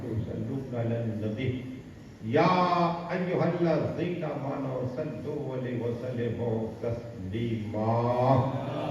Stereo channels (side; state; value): both; identical; correlation 1.00